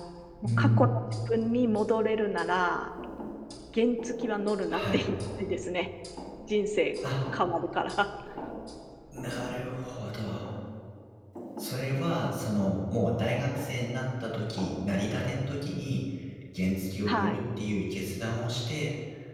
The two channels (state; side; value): identical; both; correlation 1.00